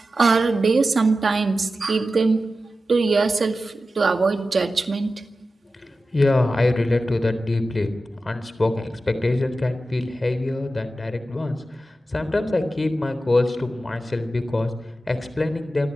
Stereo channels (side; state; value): both; normal; correlation 0.93